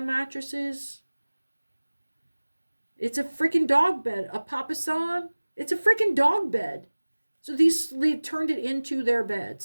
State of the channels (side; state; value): both; inverted; correlation -1.00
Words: mattresses. It's a freaking dog bed. A papasan. It's a freaking dog bed. So they turned it into their bed,